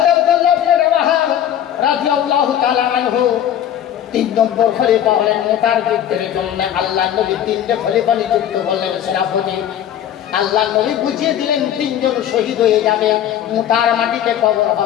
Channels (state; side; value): quieter; right; 10.4 dB